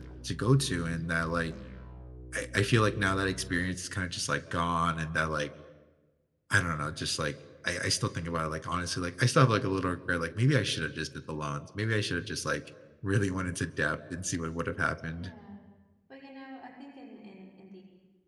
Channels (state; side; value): identical; both; correlation 1.00